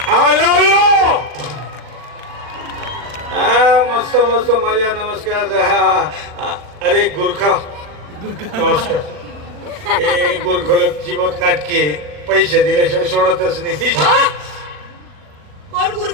आलो यो मस्त मस्त मजा नमस्कार अरे गुरखा नमस्कार ए गुरखोलक जीवत नाटके पैसे दिल्याशिवाय सोडतच नाही कोण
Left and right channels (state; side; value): late; left; 40 ms